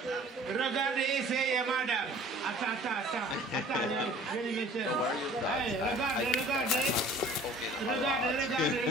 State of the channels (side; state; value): both; normal; correlation 0.49